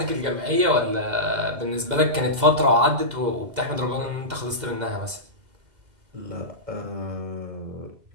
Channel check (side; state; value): left; late; 2.0 ms